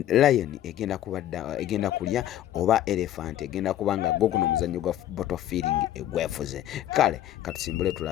lion egenda kulya oba elephant egenda kubanga gwo guno omuzannyo gwa bottle feeling egwefuze. Kale katusimbule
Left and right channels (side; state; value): right; quieter; 12.4 dB